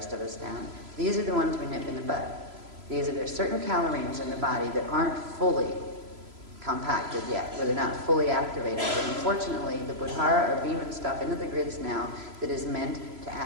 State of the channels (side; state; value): left; late; 3.0 ms